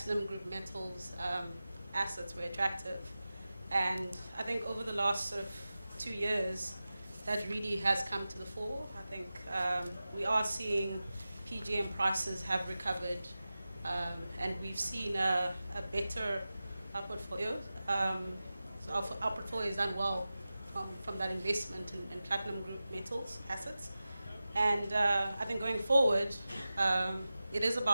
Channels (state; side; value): inverted; both; correlation -0.95